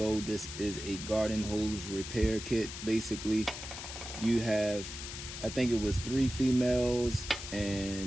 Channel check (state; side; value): noise; left; hiss, 9 dB below the sound